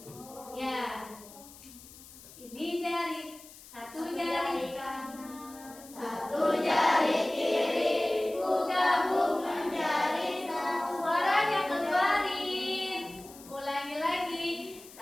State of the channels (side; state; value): left; noise; hiss, 19 dB below the sound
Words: ya. Ini jari, satu jari kanan, satu jari kiri, ku gabung menjadi satu. Suaranya keluarin. Ulangi lagi.